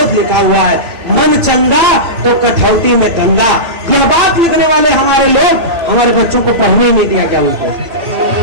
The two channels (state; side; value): late; left; 2.9 ms